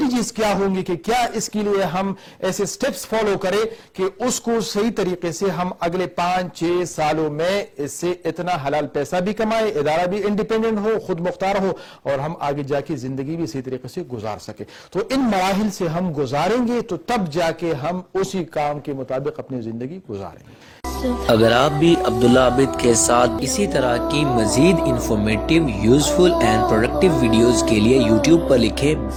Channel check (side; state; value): both; identical; correlation 1.00